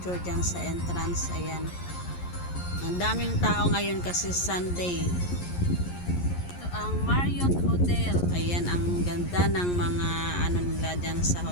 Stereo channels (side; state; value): right; late; 11 ms